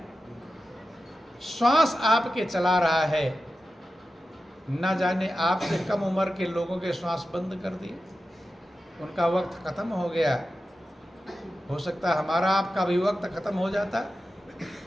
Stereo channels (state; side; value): normal; both; correlation 0.92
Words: श्वास आपके चला रहा है। न जाने आपसे कम उम्र के लोगों के श्वास बंद कर दिए, उनका वक्त खत्म हो गया। हो सकता है हमारा आपका भी वक्त खत्म हो जाता,